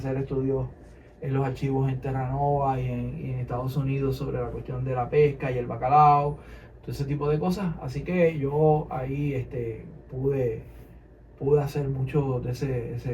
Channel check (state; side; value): identical; both; correlation 1.00